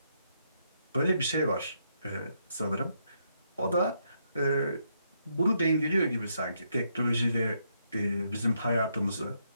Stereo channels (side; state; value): both; inverted; correlation -0.77